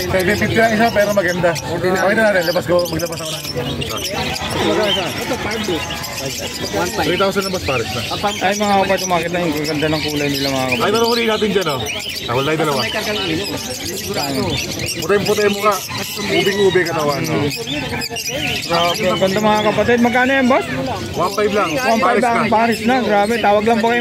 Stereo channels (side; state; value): both; identical; correlation 1.00